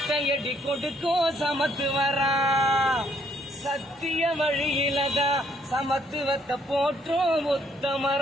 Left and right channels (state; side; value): normal; both; correlation 0.68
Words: கொடுக்கும் சமத்துவரா சத்திய வழியிலதான் சமத்துவத்தை போற்றும்